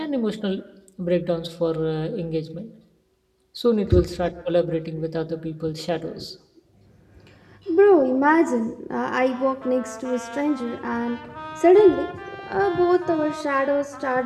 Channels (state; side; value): identical; both; correlation 1.00